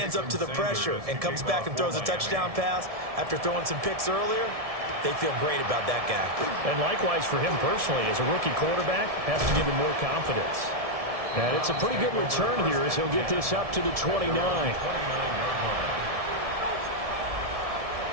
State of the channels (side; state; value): left; late; 1.7 ms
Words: up to the pressure and comes back and throws a touchdown pass after throwing some picks earlier, they feel great about that guy. And likewise for him personally, as a rookie quarterback, has to give him more confidence. And it's a pretty good return here as he'll get this up to the 29.